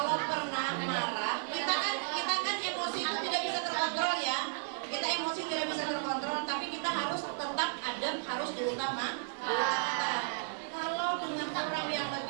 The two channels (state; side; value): silent; left; 55 dB below the other